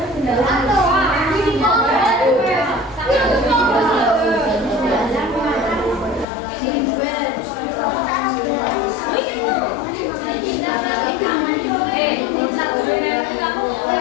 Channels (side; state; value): right; drops out; at 6.2 s